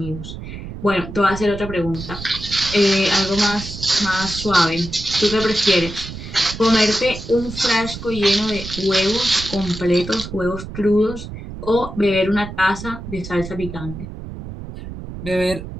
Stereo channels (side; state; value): right; noise; rumble, 10 dB below the sound